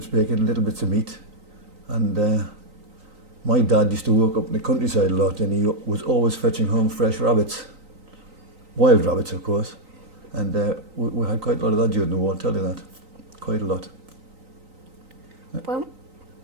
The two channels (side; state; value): left; late; 3.9 ms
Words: of bacon, little bits of meat. And my dad used to work up in the countryside a lot, and he was always fetching home fresh rabbits. Wild rabbits, of course. And we had quite a lot of that during the war, I'll tell you that. Quite a lot.